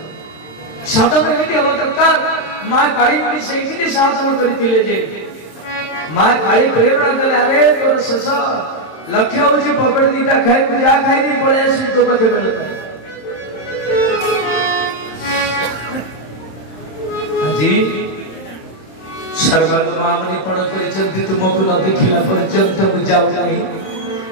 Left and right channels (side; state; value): right; late; 26 ms